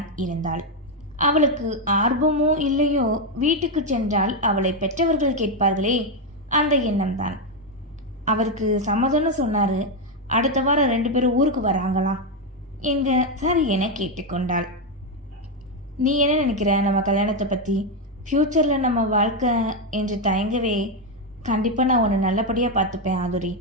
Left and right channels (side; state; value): both; normal; correlation 0.05